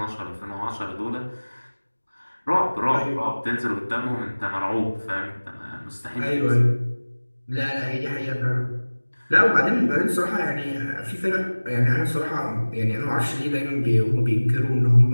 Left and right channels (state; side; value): inverted; both; correlation -1.00